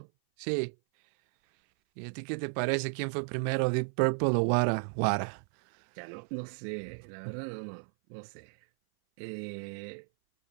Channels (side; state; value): left; silent; 56 dB below the other